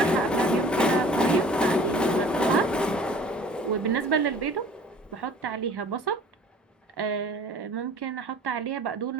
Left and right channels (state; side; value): normal; both; correlation 0.48